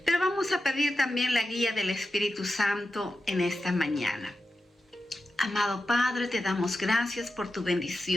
Pero vamos a pedir también la guía del Espíritu Santo en esta mañana. Amado Padre, te damos gracias por tu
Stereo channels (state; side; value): normal; both; correlation 0.91